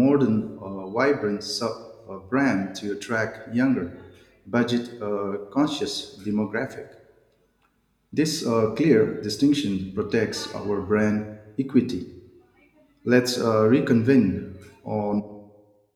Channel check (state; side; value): identical; both; correlation 1.00